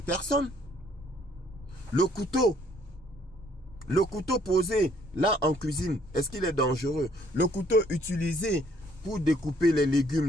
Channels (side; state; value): both; normal; correlation 0.64